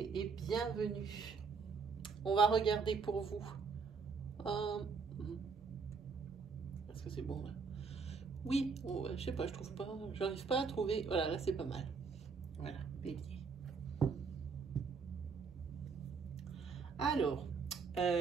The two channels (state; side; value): quieter; left; 5.2 dB